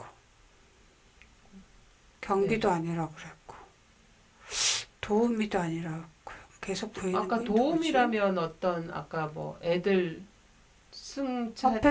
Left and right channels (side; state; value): both; identical; correlation 1.00